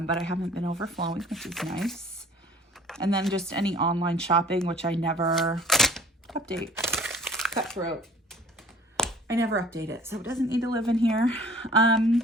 I haven't been overflowing, which is nice. And then just any online shopping, which I never update. Cutthroat. I never update it, so it doesn't need to live in here.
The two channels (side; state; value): both; normal; correlation 0.51